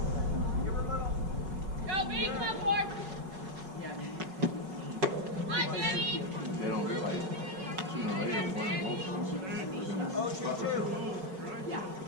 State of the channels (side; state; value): left; late; 5.3 ms